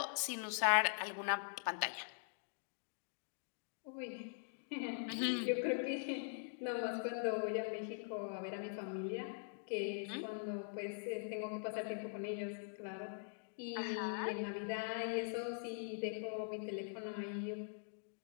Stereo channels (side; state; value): right; silent; digital silence